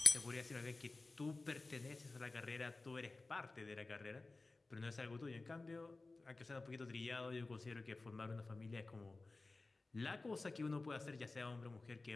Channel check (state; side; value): quieter; right; 3.4 dB